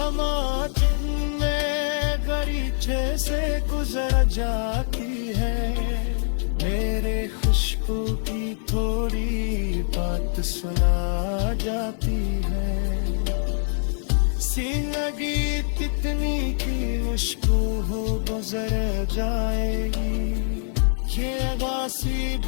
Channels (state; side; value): silent; right; 62 dB below the other